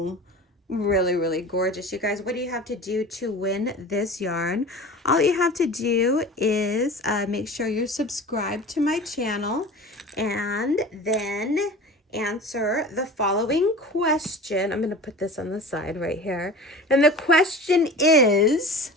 Really, really gorgeous. You guys, what do you have to do to win this yarn? All you have to do is make sure you're subscribed to my channel and then answer the following question. I'm going to put this on the side right here. And the question is,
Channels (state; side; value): normal; both; correlation 0.37